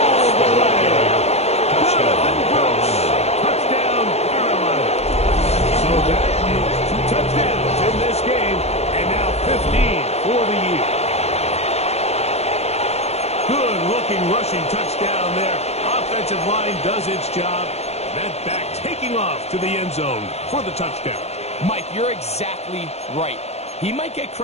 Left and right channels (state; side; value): late; right; 0.31 ms